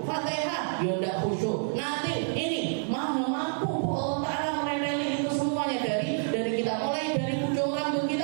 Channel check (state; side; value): silent; left; 59 dB below the other